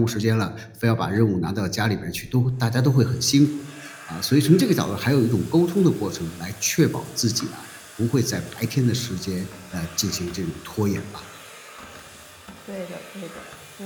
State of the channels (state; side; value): identical; both; correlation 1.00